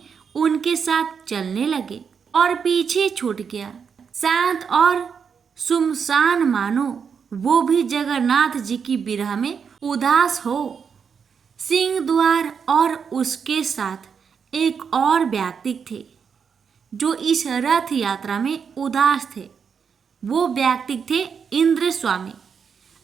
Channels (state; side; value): quieter; left; 6.5 dB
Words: उनके साथ चलने लगे और पीछे छूट गया। शांत और सुमसान मानो वो भी जगन्नाथ जी की विरह में उदास हो। सिंह द्वार और उसके साथ एक और व्यक्ति थे जो इस रथ यात्रा में उदास थे। वो व्यक्ति थे इंद्र स्वामी।